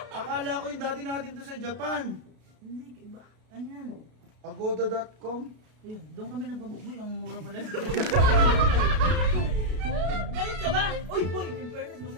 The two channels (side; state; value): left; late; 33 ms